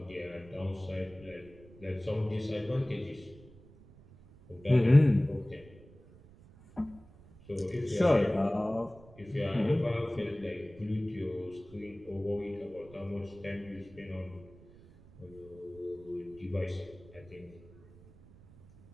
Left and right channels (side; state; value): right; noise; rumble, 22 dB below the sound